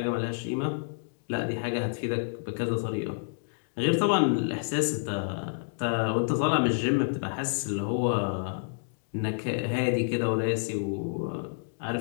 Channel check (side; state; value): right; silent; digital silence